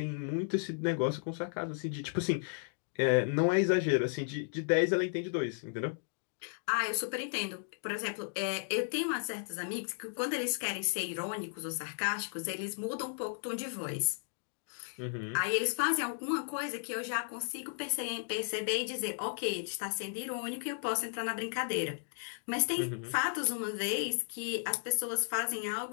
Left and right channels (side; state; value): right; silent; digital silence